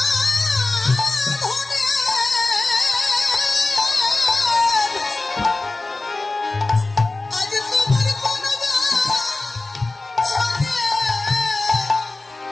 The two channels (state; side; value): quieter; right; 3.2 dB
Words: বাঁধনে আজ তোমার কোন বাঁধনে,